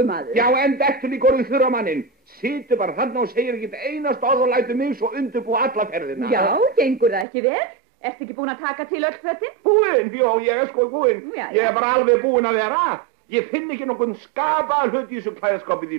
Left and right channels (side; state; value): left; drops out; at 7.2 s